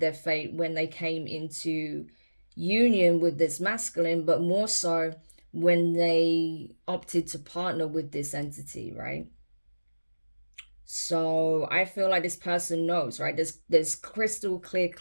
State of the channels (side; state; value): both; inverted; correlation -1.00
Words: fate when they came into union with this masculine, but more so when they opted to partner with this entity, right? So I feel like this person knows, right? There's crystal clear